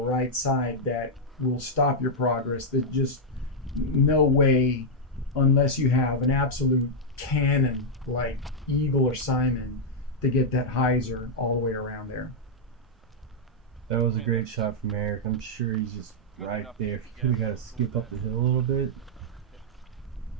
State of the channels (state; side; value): normal; both; correlation -0.05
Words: side that will stop your progress. There's just no way, unless you have an absolute cannon like Eagle or Simon, to get that hyzer all the way around there. That was a great shot from Eric. I'm sure he's just right there. If he could have got to skip up the hill a little bit,